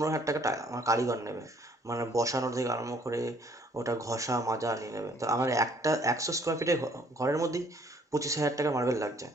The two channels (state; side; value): normal; both; correlation 0.61